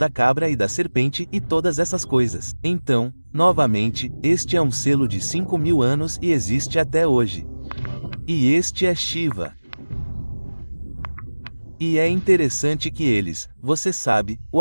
cabra e da serpente e todas essas coisas. Então, novamente, este é um selo de 5.000 anos e existe até hoje. E este é Shiva. E é interessante que você sabe, o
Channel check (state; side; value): inverted; both; correlation -1.00